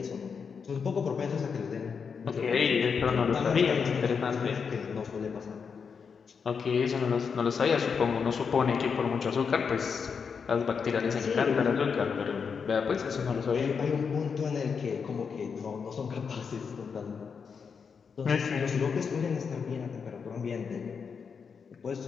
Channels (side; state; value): right; quieter; 6.0 dB